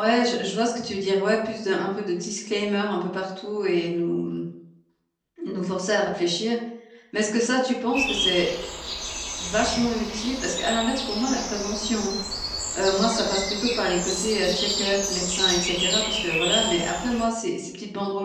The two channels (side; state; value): both; identical; correlation 1.00